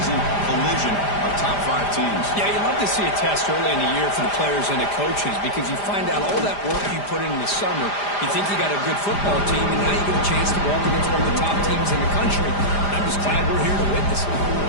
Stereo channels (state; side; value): late; right; 5.0 ms